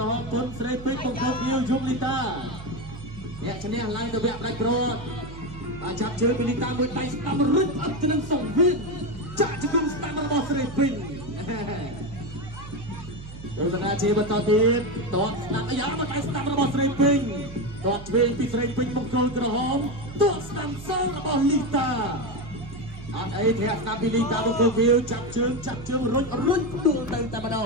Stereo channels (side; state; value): right; noise; hum, 13 dB below the sound